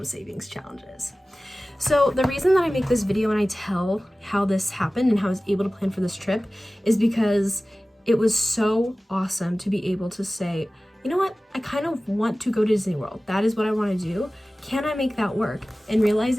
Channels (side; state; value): both; normal; correlation 0.97